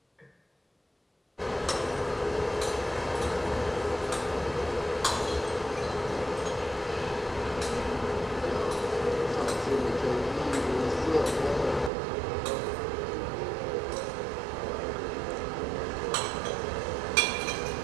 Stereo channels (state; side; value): drops out; left; at 11.9 s